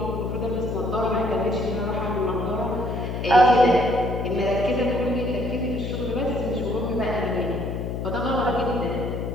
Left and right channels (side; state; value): left; noise; hum, 4 dB below the sound